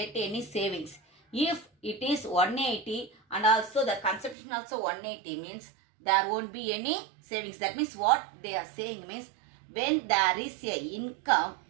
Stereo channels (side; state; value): left; drops out; at 4.4 s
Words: any savings. If it is 180 and also the consumption also 180 means there won't be any savings. That means what they are saying means when there is a income,